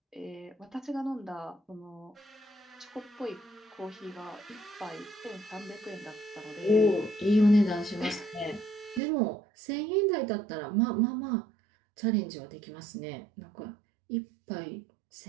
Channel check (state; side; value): drops out; left; at 9.0 s